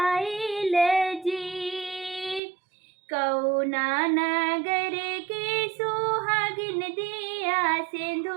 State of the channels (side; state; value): left; drops out; at 2.4 s